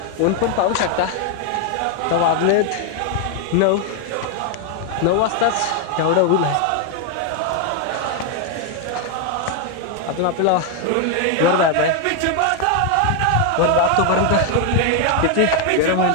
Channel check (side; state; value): both; different; correlation 0.01